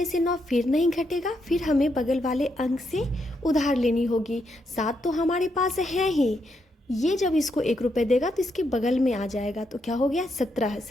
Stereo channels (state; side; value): normal; both; correlation 0.80